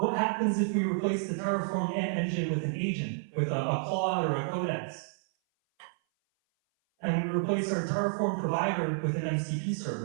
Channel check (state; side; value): silent; left; 56 dB below the other